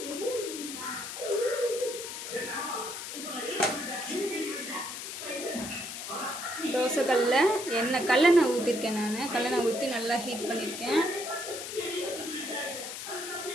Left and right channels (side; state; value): left; noise; hiss, 7 dB below the sound